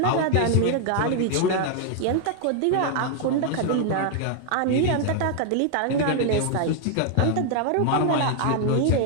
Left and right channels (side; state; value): both; different; correlation 0.00